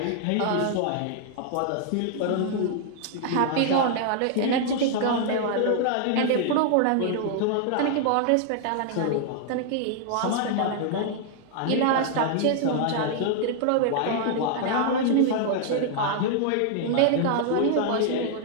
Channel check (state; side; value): different; both; correlation -0.01